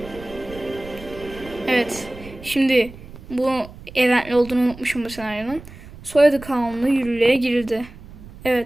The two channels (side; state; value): right; noise; rumble, 17 dB below the sound